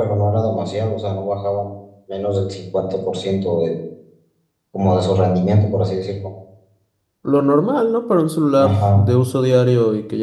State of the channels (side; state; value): both; identical; correlation 1.00